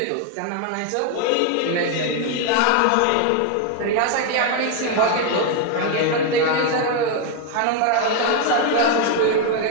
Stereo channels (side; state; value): both; different; correlation 0.01